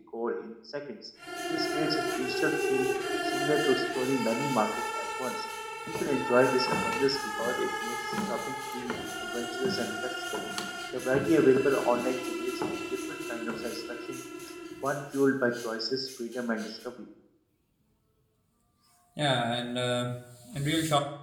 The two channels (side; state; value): both; identical; correlation 1.00